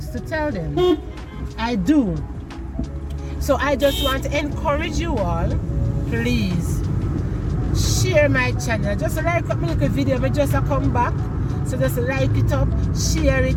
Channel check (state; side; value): identical; both; correlation 1.00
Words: to tell them. I do. So I just want to encourage you all, please share my channel. Just like up my little video, I just come back. So just like it up, share